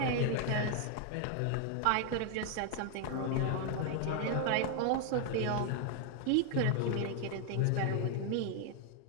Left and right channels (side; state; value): both; different; correlation 0.00